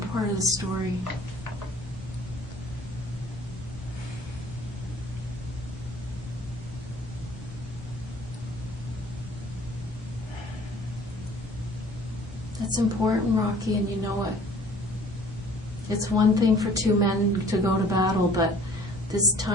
part of the story. That's important, Rocky, and you know it. It's one thing for two men to go to battle, but this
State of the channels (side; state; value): both; normal; correlation 0.52